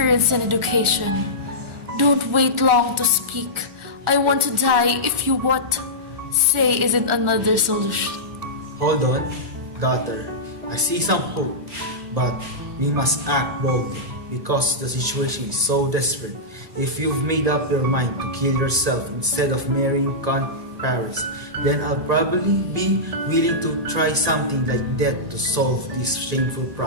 and education. Don't wait long to speak. I want to die if you what say isn't another solution. Hold on, daughter. I see some hope, but we must act boldly because the situation is so desperate. If you've made up your mind to kill yourself instead of marrying Count Paris, then I'll probably be willing to try something like death to solve this shameful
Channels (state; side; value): late; left; 1.8 ms